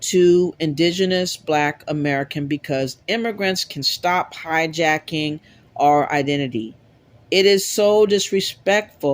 to Indigenous Black American because immigrants can stop hijacking our identity. It is so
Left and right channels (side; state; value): both; identical; correlation 1.00